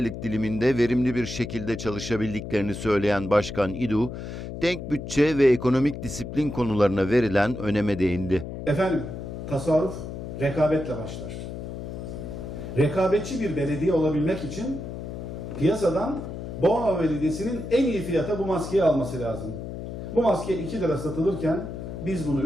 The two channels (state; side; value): noise; left; hum, 8 dB below the sound